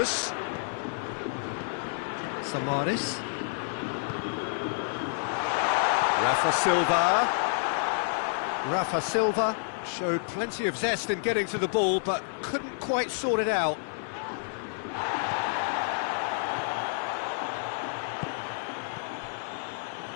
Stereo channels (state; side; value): silent; right; digital silence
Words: Samaris. Rafa Silva showed plenty of zest in getting to the ball, but couldn't quite sort it out.